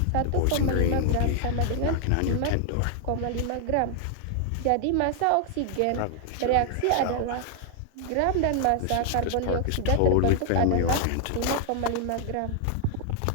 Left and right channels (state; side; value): different; both; correlation 0.00